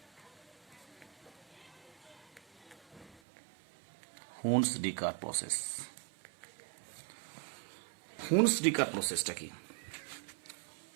process. Hunsdiecker প্রসেসটা কি?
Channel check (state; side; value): drops out; left; at 3.2 s